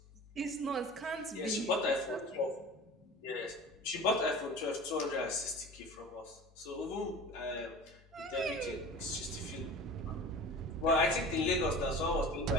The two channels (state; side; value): normal; both; correlation 0.38